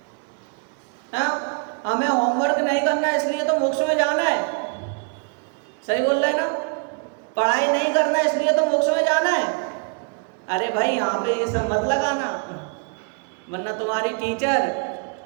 हाँ? हमें होमवर्क नहीं करना इसलिए तो मोक्ष में जाना है। सही बोल रहे हैं ना? पढ़ाई नहीं करना इसलिए तो मोक्ष में जाना है। अरे भाई यहाँ पे ये सब मत लगाना, वरना तुम्हारी टीचर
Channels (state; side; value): quieter; left; 36.6 dB